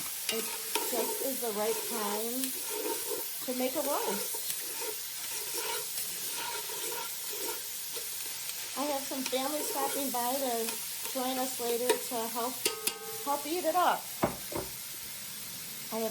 it just is the right time to make a roast. I have some family stopping by to join us later to help eat it up. I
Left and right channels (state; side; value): identical; both; correlation 1.00